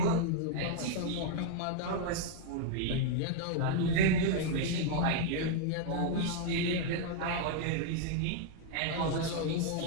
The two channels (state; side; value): different; both; correlation 0.00